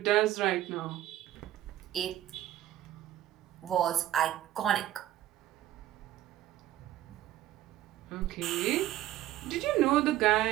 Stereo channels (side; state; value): left; quieter; 13.5 dB